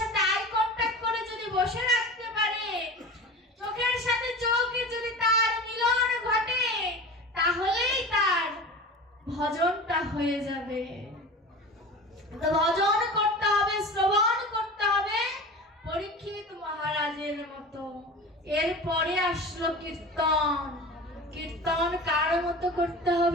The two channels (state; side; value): normal; both; correlation 0.34